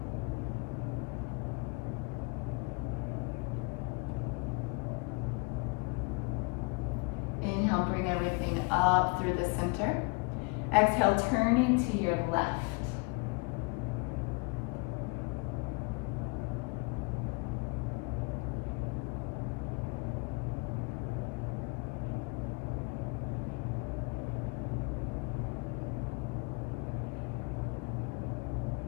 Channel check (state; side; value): quieter; right; 30.9 dB